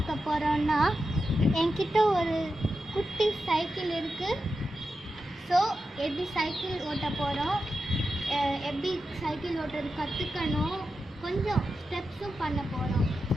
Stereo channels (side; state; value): both; normal; correlation 0.90